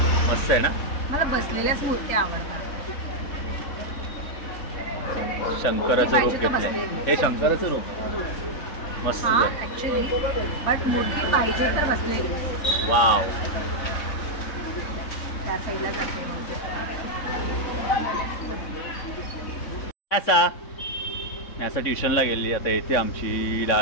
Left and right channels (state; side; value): late; right; 3.6 ms